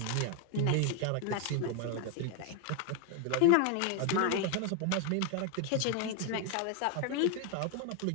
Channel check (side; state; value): both; different; correlation 0.01